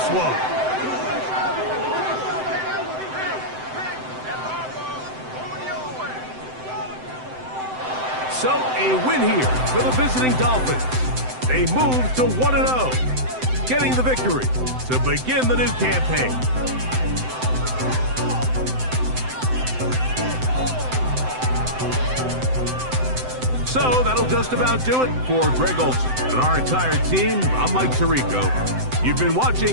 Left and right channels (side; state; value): left; late; 7.8 ms